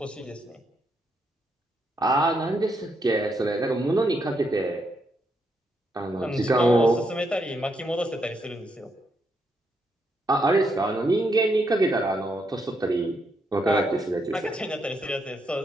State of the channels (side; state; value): both; normal; correlation 0.78